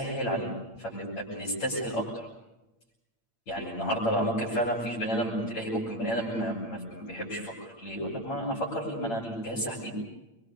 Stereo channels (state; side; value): late; right; 8.8 ms